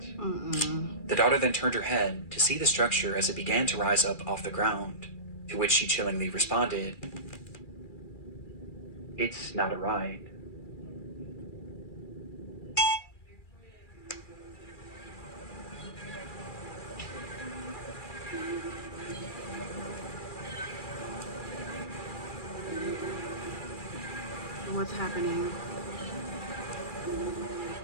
The daughter then turned her head to see the structure as it began to rise up off the ground, to which she chillingly responded, "It's not a ride." What's happening?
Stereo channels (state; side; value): late; right; 2.4 ms